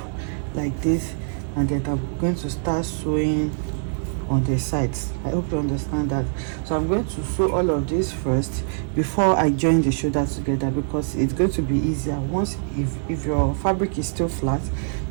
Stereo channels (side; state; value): left; silent; 63 dB below the other